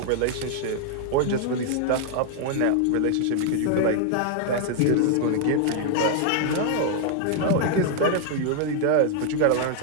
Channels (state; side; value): different; both; correlation 0.00